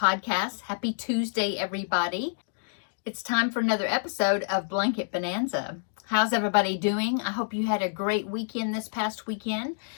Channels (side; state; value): right; silent; digital silence